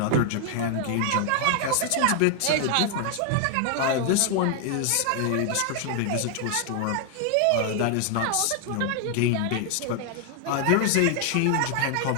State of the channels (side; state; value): both; different; correlation 0.00